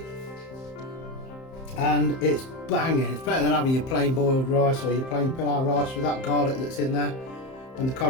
and it's banging. It's better than having your plain boiled rice or your plain pilau rice with that garlic that's in there. And the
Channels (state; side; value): late; right; 31 ms